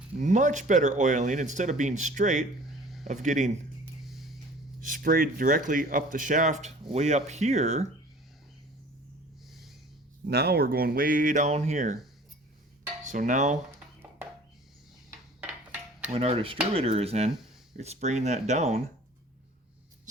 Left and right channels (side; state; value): both; normal; correlation 0.47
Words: much better oiling. Instead of being straight, of getting sprayed directly up the shaft way up here, now we're going way down here. So now when our distributor is in, it's spraying that down